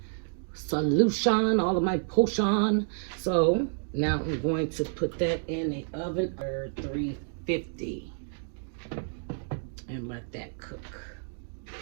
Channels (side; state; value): left; silent; digital silence